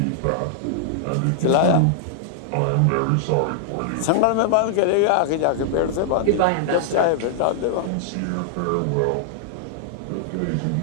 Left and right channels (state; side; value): different; both; correlation -0.01